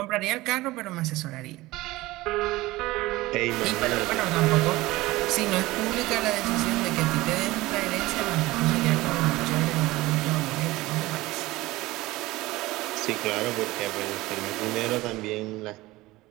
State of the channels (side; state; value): left; quieter; 19.2 dB